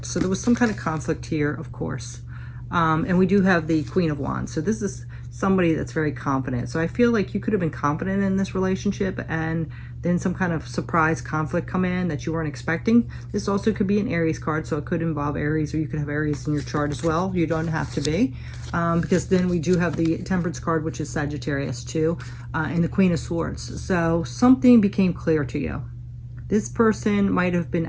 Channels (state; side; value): identical; both; correlation 1.00